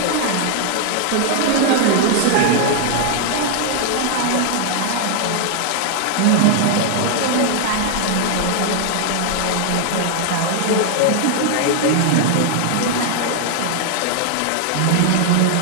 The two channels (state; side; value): different; both; correlation 0.00